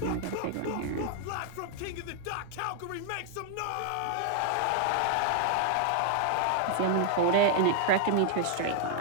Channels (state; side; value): different; both; correlation 0.00